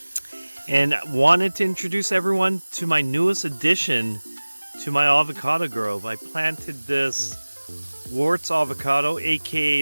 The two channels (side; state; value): both; inverted; correlation -1.00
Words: and wanted to introduce everyone to my newest addition to my avocado grove. I planted this Warts avocado,